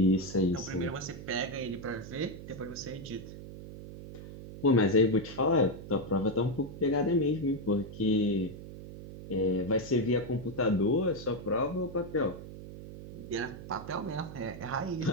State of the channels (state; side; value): noise; right; hum, 12 dB below the sound